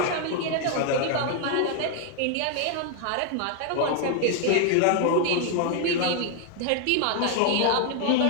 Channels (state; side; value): different; both; correlation 0.00